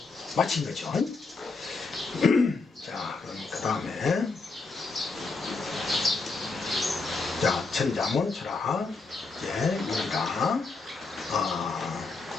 마친 거죠. 자, 그럼 그 다음에 자, 천자문 철학 입니다.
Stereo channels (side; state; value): right; quieter; 4.0 dB